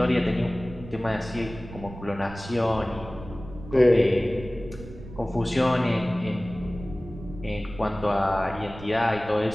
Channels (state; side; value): noise; right; rumble, 14 dB below the sound